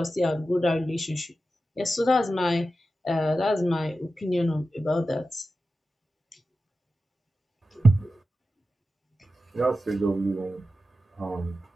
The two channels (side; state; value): both; normal; correlation 0.92